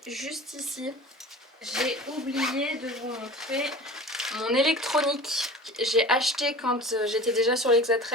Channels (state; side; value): normal; both; correlation 0.38